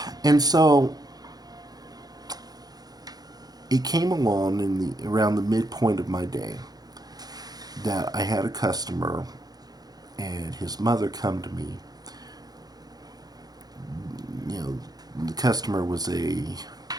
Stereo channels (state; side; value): late; left; 0.19 ms